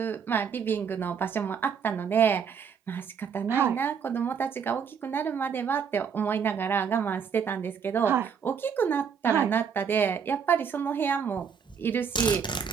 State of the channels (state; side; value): quieter; left; 6.9 dB